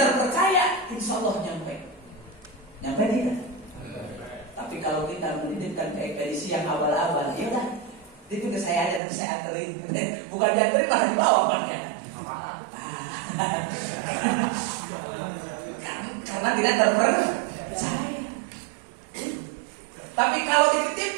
insya Allah nyampe tidak? Tapi kalau kita menitipkan ke ekspedisi yang abal-abal, ya udah, itu ke saya aja dan saya anterin. Bukan dianterin, malah dibawa banyak. Karena tidak terpercaya. Tapi kalau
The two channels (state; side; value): drops out; left; at 9.0 s